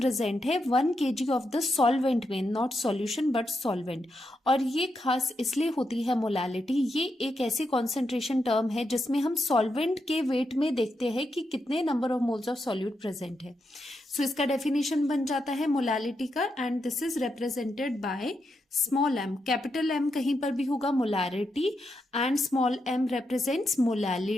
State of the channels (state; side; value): normal; both; correlation 0.84